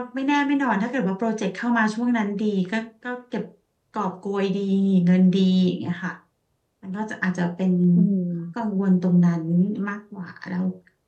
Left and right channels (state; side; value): identical; both; correlation 1.00